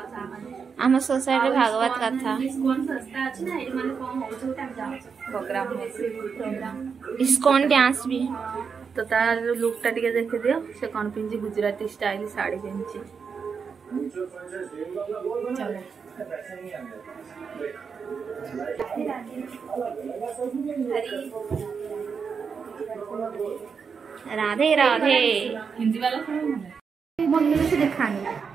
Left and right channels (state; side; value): quieter; left; 5.9 dB